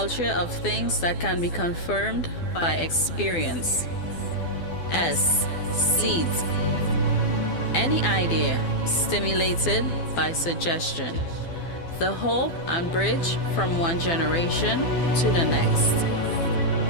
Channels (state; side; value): late; right; 12 ms